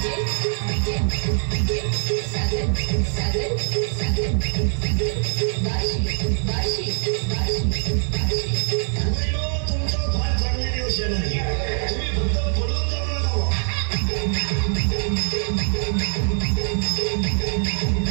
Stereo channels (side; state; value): left; silent; digital silence